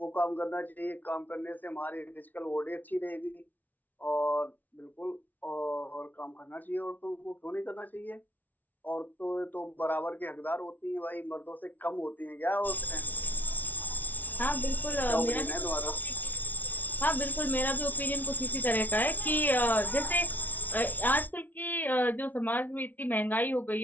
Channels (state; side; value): late; right; 0.079 ms